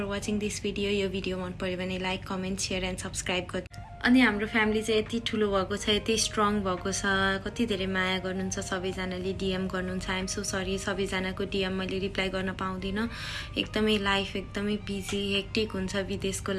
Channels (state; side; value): identical; both; correlation 1.00